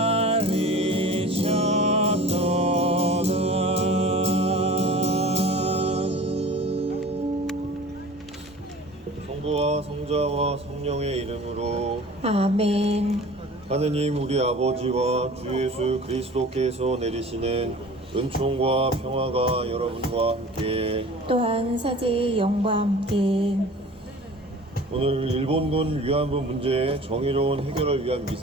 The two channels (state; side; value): normal; both; correlation 0.42